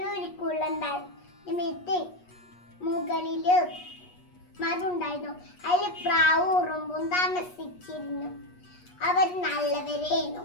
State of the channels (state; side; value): late; right; 8.3 ms